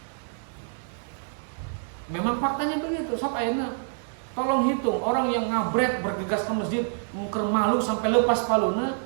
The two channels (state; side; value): silent; left; digital silence